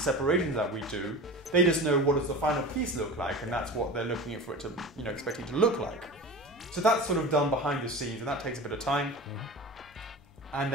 that we do. They just know what does the final piece look like, and that's what they're looking at for it to, expecting to look like. So that's sort of done behind the scenes, and that takes a bit of time. And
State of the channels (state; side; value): normal; both; correlation 0.33